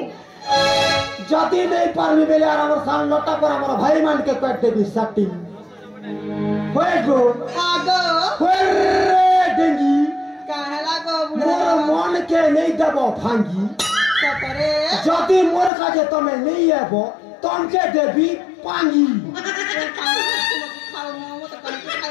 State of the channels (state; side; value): drops out; right; at 15.7 s